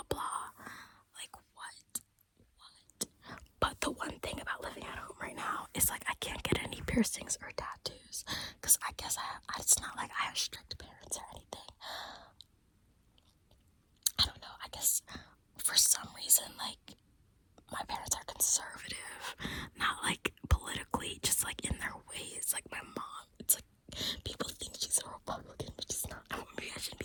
blah. Like, what? But the one thing about living at home right now is like I can't get any piercings or tattoos, because I guess it's not like I have strict parents or anything. I don't know, I guess for some reason, like, my parents are conservative, not like politically, just like in their ways. Like, my mom, it's like people think she's a Republican, but she's not. Maybe I shouldn't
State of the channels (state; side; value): identical; both; correlation 1.00